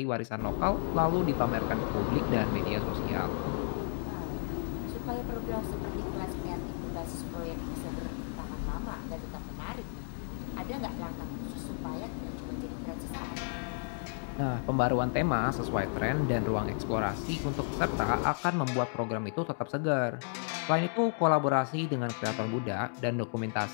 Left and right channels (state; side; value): silent; right; digital silence